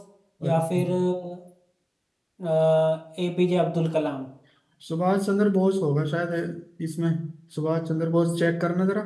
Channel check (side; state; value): both; identical; correlation 1.00